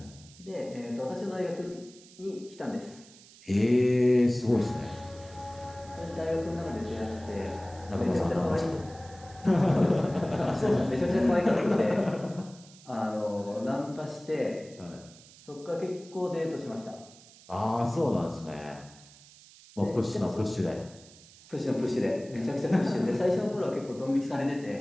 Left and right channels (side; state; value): right; noise; hiss, 22 dB below the sound